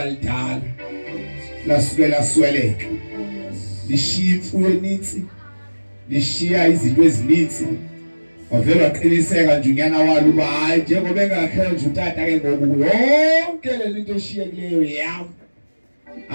lidala. Lasukela sweleka. Lishiya imfuyo eninzi. Lishiya izinto ezininzi. Wavela waqiniseka nje unyana walo uba hayi njengoba engakhe nje utata ke ngoku yonke le nto eshiyekileyo yami.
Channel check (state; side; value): inverted; both; correlation -1.00